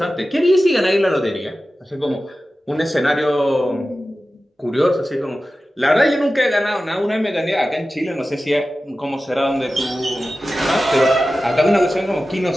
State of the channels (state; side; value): normal; both; correlation 0.94